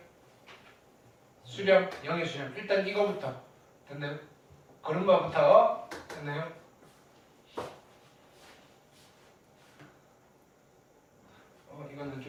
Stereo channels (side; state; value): both; identical; correlation 1.00